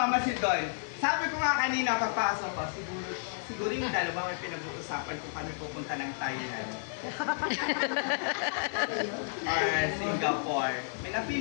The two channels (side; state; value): right; silent; digital silence